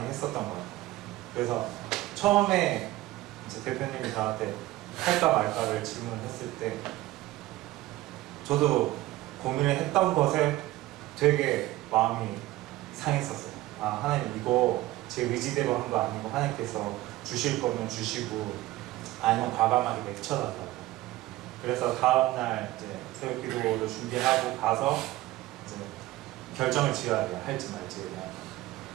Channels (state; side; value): quieter; left; 16.9 dB